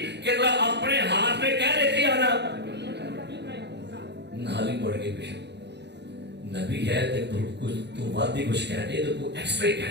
کہ ذرا اپنے ہاتھ میں کیا لیتی آنا, نالی پڑ گئی. پیچھے نبی ہے تو وادی کچھ کہنے تو تو ایکسٹرا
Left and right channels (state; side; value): late; left; 0.50 ms